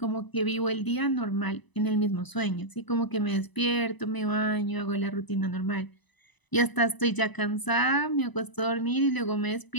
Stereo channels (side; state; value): right; late; 1.0 ms